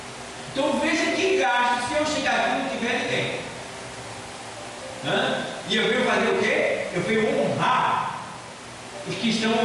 Então veja que gasto se eu chegar aqui e não tiver ninguém. E eu venho fazer o quê? Eu venho honrar os que estão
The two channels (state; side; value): identical; both; correlation 1.00